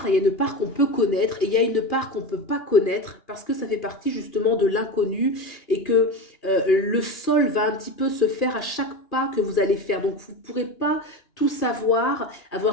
qu'on peut connaître, et il y a une part qu'on ne peut pas connaître, parce que ça fait partie justement de l'inconnu, et que le sol va un petit peu se faire à chaque pas que vous allez faire. Donc vous ne pourrez pas tout savoir,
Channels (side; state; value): right; late; 2.9 ms